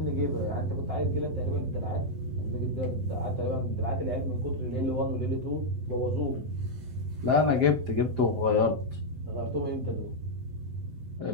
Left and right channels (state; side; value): late; left; 7.8 ms